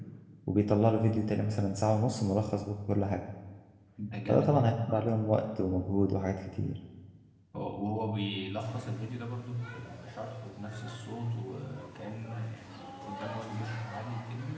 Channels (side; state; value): both; identical; correlation 1.00